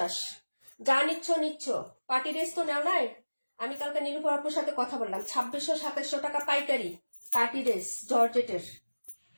যা নিচ্ছ নিচ্ছ। পার্টি ড্রেস তো নেও নাই? আমি কালকে নীলুফার আপুর সাথে কথা বললাম, 2600-2700 টাকা পাইকারি পার্টি ড্রেস জর্জেটের।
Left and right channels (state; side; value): inverted; both; correlation -1.00